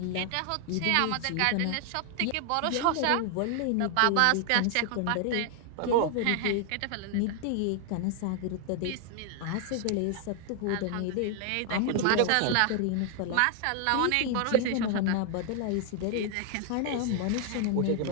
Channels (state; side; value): different; both; correlation 0.00